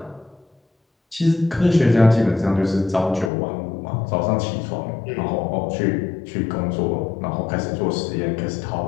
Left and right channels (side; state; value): right; drops out; at 3.3 s